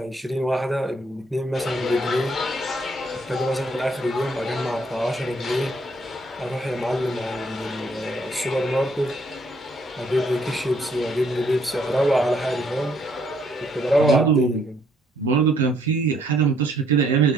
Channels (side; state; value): both; normal; correlation 0.68